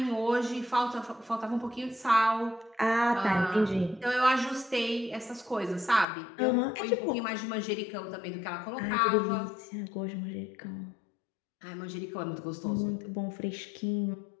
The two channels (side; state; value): right; drops out; at 6.1 s